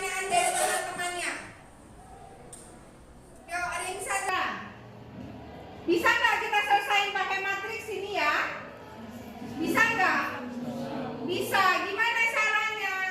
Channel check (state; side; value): identical; both; correlation 1.00